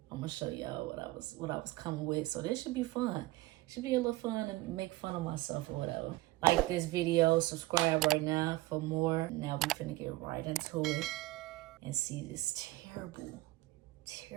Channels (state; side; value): quieter; left; 18.9 dB